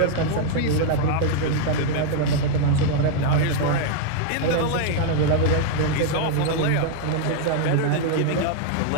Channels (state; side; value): different; both; correlation 0.00